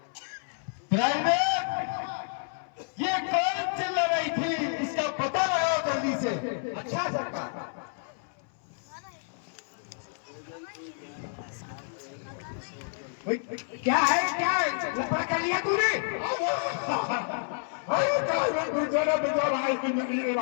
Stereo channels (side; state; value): right; silent; 58 dB below the other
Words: प्राइवेट ये कौन चिल्ला रही थी, इसका पता लगाओ जल्दी से। अच्छा सरकार। क्या है लफड़ा कर लिया तूने? अरे गुजरा बेटा भाई की नदी